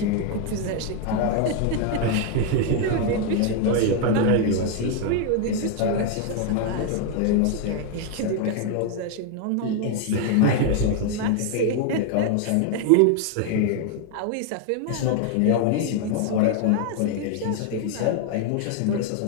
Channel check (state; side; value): different; both; correlation 0.01